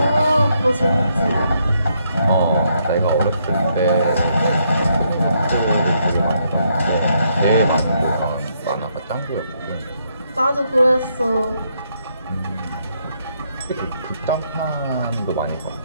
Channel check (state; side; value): inverted; both; correlation -0.75